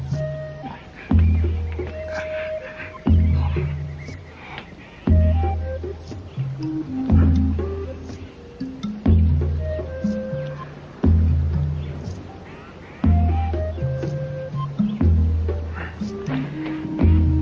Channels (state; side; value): identical; both; correlation 1.00